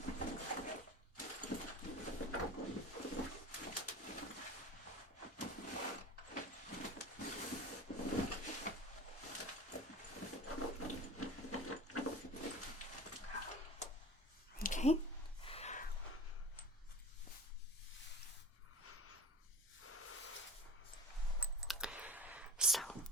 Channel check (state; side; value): normal; both; correlation 0.38